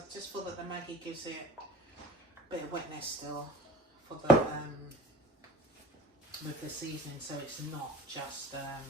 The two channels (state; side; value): normal; both; correlation 0.45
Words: just feel that the Maggi gives it a bit of wetness still for the with the seasoning, so it's not just that